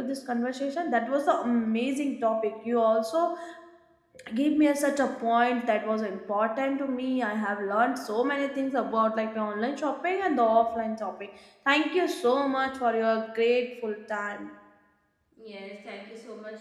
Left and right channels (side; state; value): both; identical; correlation 1.00